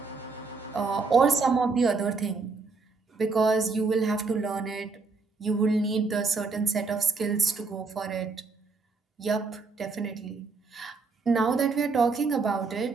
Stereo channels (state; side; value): quieter; left; 4.3 dB